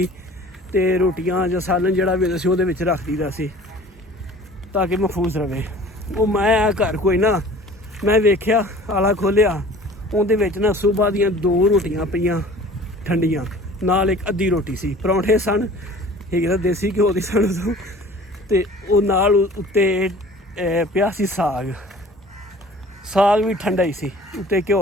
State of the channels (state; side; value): normal; both; correlation 0.46